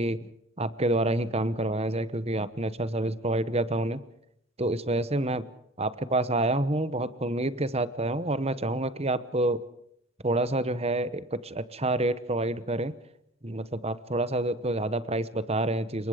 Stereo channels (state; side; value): normal; both; correlation 0.44